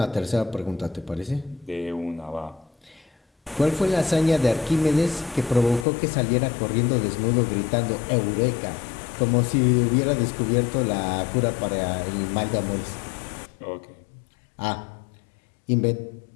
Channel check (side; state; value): right; drops out; at 5.9 s